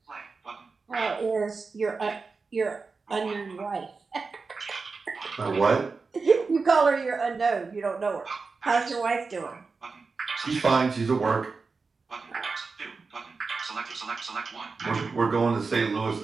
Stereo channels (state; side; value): quieter; left; 4.4 dB